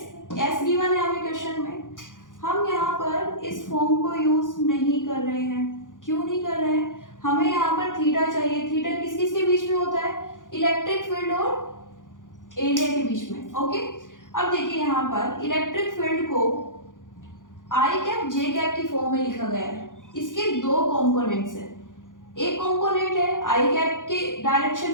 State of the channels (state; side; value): late; right; 0.88 ms